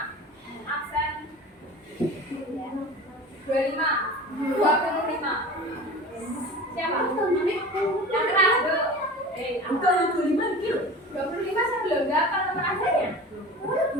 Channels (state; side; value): normal; both; correlation 0.36